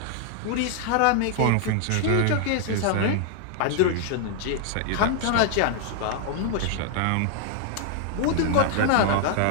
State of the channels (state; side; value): different; both; correlation -0.01